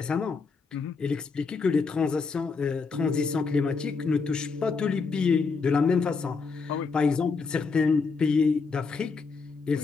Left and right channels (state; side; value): quieter; right; 4.8 dB